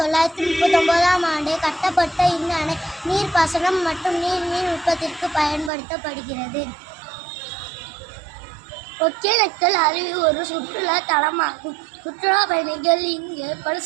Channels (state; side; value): drops out; left; at 5.7 s